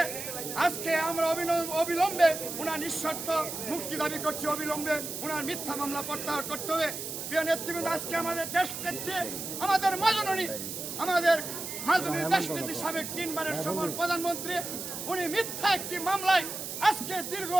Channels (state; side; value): noise; right; hiss, 6 dB below the sound